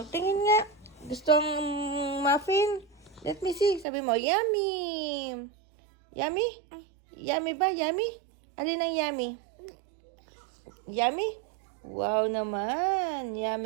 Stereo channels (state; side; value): drops out; left; at 3.9 s